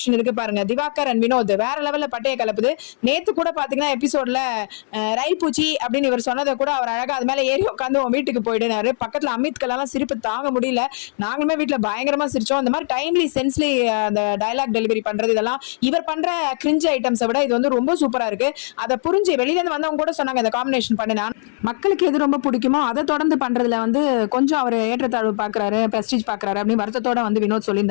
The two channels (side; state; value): right; silent; digital silence